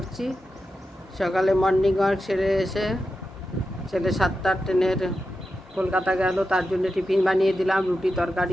সকালে মর্নিং ওয়াক সেরে এসে ছেলে 7টার ট্রেনের কলকাতা গেল, তার জন্য টিফিন বানিয়ে দিলাম, রুটি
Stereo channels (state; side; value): normal; both; correlation 0.90